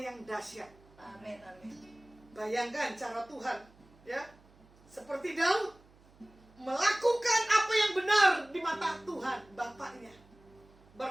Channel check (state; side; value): noise; right; hum, 27 dB below the sound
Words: dahsyat. Amin. Amin. Bayangkan cara Tuhan, ya, seperti Daud melakukan apa yang benar di mata Tuhan Bapaknya.